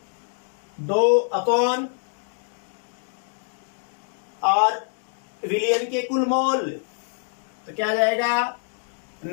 अपॉन और विलियन के कुल मोल तो क्या आ जाएगा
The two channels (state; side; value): silent; right; digital silence